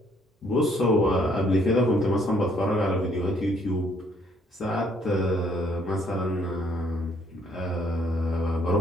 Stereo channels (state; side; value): normal; both; correlation 0.66